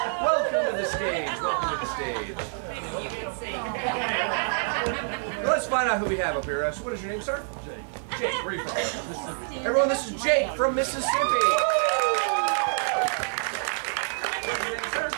Welcome to the stage. Welcome to the stage. Let's find out who we have up here. What is your name, sir? Jake. Jake, where are you from? Everyone, this is Jake from Mississippi. What's your name, sir?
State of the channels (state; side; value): silent; left; digital silence